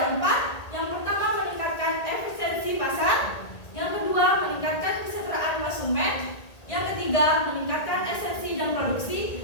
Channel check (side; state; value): right; late; 1.8 ms